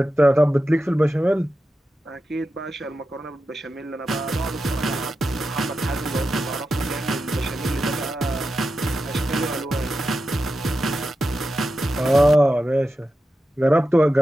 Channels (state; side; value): normal; both; correlation 0.91